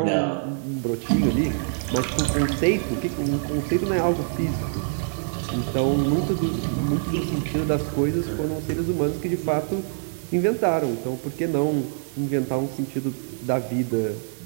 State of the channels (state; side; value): silent; left; digital silence